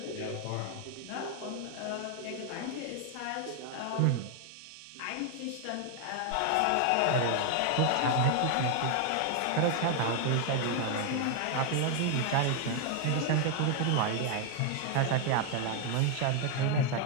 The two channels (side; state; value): both; different; correlation 0.00